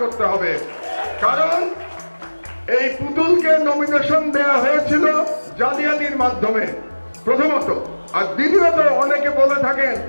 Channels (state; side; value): inverted; both; correlation -1.00